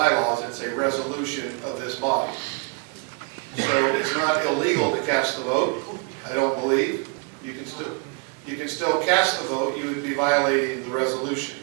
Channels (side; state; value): left; quieter; 32.9 dB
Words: it's a resolution of this body. So it's not illegal to cast the vote, I don't believe. You can still cast the vote, you would be violating the resolution.